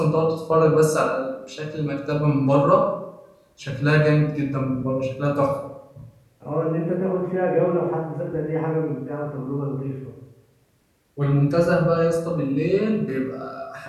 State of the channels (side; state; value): both; identical; correlation 1.00